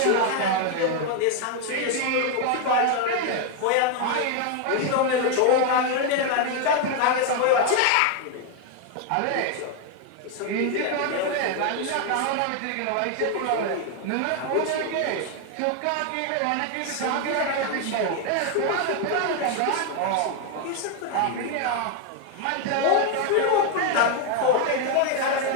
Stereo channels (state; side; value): different; both; correlation 0.01